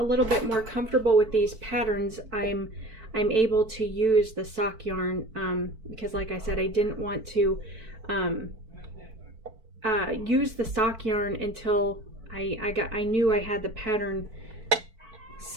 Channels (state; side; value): late; left; 4.5 ms